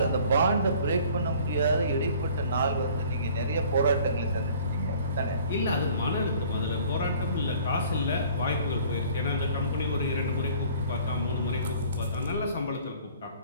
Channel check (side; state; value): both; inverted; correlation -0.52